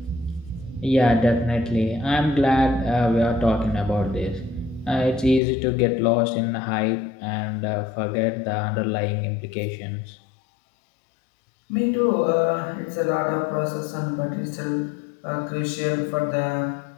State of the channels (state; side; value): drops out; right; at 5.4 s